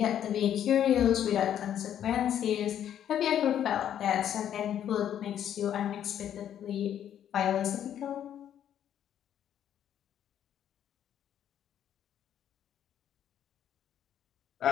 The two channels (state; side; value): quieter; right; 10.1 dB